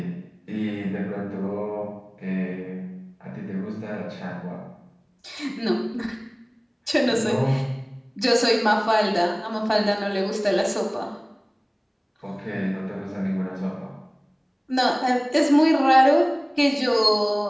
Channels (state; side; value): identical; both; correlation 1.00